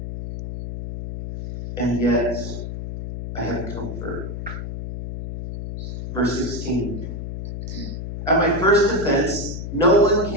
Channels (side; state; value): left; noise; hum, 7 dB below the sound